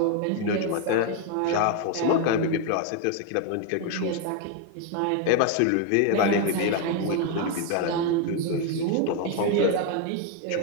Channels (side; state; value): both; different; correlation 0.01